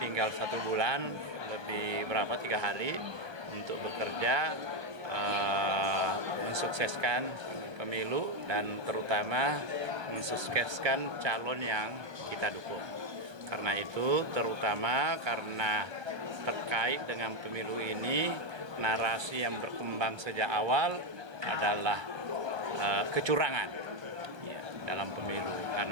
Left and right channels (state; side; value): late; left; 1.2 ms